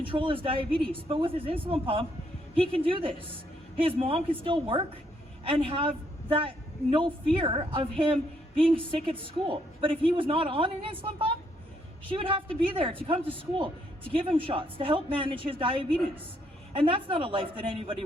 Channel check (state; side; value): normal; both; correlation 0.72